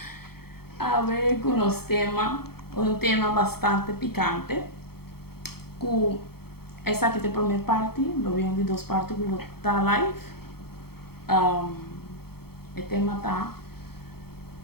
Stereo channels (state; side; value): late; right; 0.95 ms